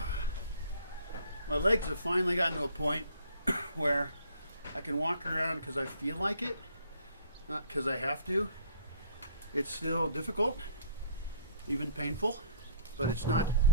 legs have finally gotten to a point where I can walk around because I feel like it, not because I have to. It's still difficult, even painful, but it's not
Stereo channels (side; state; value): both; inverted; correlation -0.57